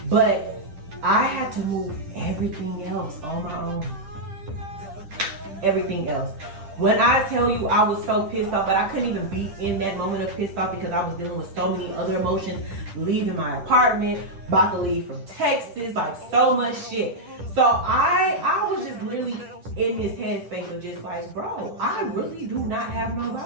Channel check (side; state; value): left; late; 10 ms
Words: But I had to move everything else on my own. Everything else. When I tell you I was so pissed off, but I couldn't even be in that moment of pissed off because I was dealing with so many other emotions, leaving my apartment, about to leave from Texas, like so much shit. So I was just literally in this headspace of just like, bro, I really do not have